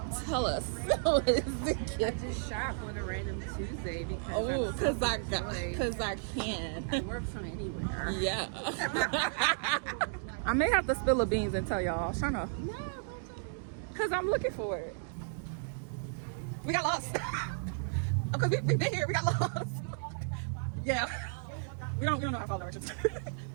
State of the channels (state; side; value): silent; left; digital silence